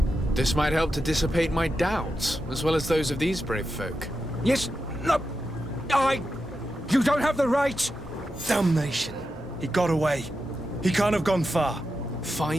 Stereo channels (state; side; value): normal; both; correlation 0.89